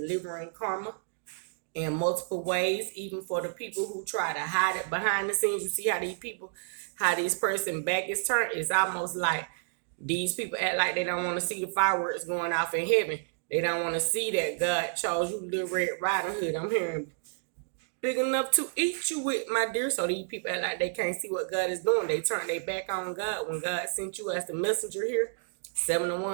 karma? In multiple ways, even for the people who try to hide it behind the scenes. You see how this person back is turned. It's almost like these people act like they don't want to see the fireworks going off in heaven. They don't want to see that God chose you, Little Red Riding Hood. I'm hearing big enough to eat you with, my dear. So these people act like they can't see what God is doing. They turn their back on God when God sent you as the messenger here. 7 of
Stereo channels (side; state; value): left; silent; digital silence